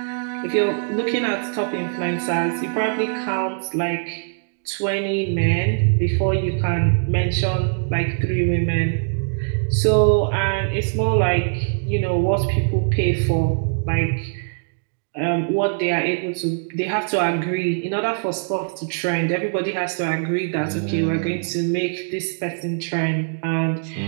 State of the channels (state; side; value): silent; left; digital silence